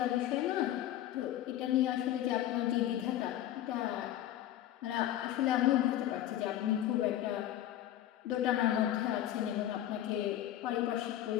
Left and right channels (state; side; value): quieter; right; 12.6 dB